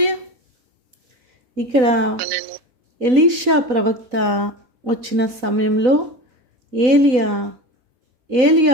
ఇక్కడ ఎలీషా ప్రవక్త వచ్చిన సమయంలో ఏలియా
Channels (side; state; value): left; late; 4.0 ms